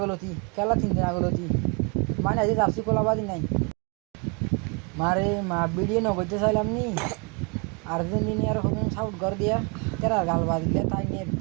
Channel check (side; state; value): left; quieter; 32.8 dB